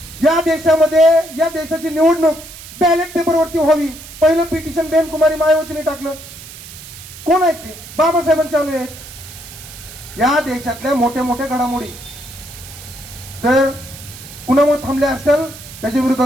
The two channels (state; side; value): noise; right; hiss, 16 dB below the sound